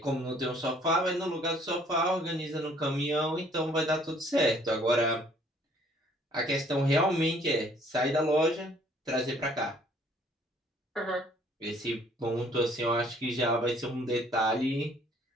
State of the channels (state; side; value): normal; both; correlation 0.59